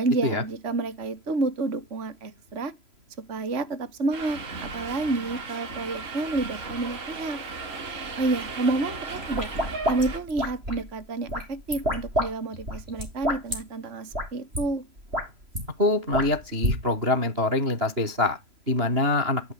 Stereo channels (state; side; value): late; left; 3.0 ms